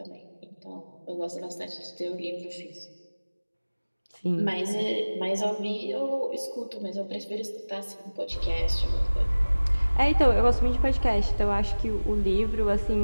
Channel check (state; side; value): inverted; both; correlation -1.00